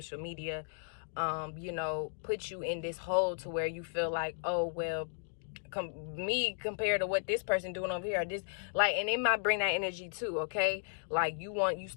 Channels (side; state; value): right; silent; digital silence